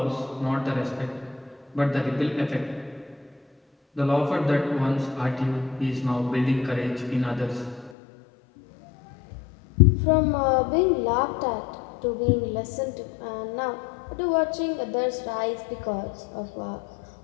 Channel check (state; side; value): drops out; right; at 8.0 s